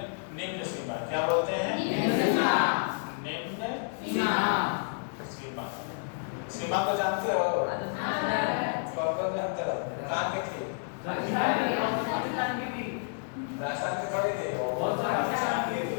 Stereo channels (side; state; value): right; silent; digital silence